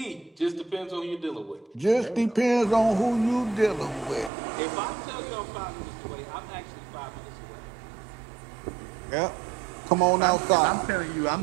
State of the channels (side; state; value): left; drops out; at 4.3 s